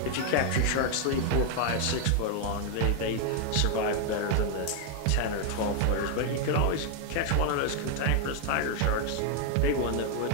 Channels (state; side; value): different; both; correlation 0.00